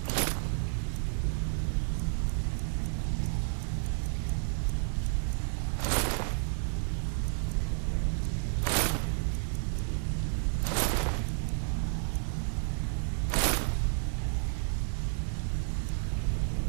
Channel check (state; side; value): silent; left; digital silence